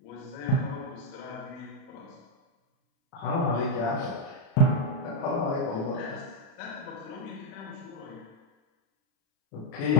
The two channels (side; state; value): right; late; 36 ms